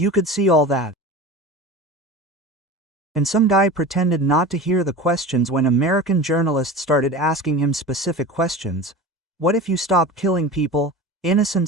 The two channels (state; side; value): normal; both; correlation 0.33